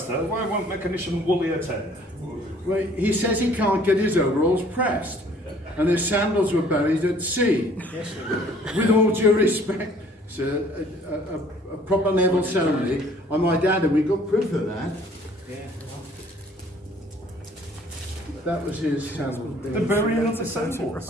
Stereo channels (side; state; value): both; normal; correlation 0.57